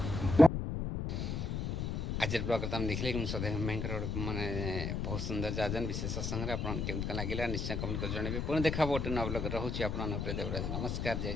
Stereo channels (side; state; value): left; noise; rumble, 2 dB below the sound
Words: आज ब्लॉग तुम देखिले कि सदैव भयंकर माने बहुत सुंदर जाजन विशेष सत्संग आपन केमत लगिला निश्चय कमेंट कर जणबे पुणी देखा बोटे न ब्लॉग रहउछि आपन प्रिय देवराज। नमस्कार